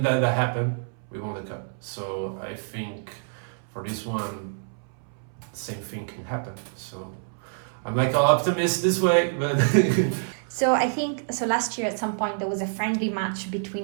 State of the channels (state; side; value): silent; left; 60 dB below the other